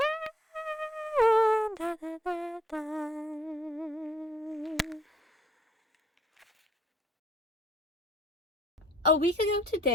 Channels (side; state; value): both; normal; correlation 0.65